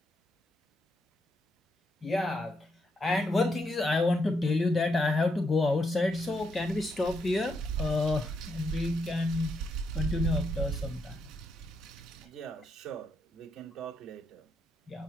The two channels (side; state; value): both; normal; correlation 0.79